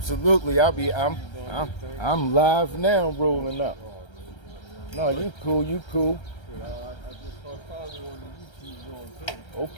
I'm live now, rolling up. No, you cool, you cool. I just saw probably on the YouTube going too.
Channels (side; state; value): right; late; 1.3 ms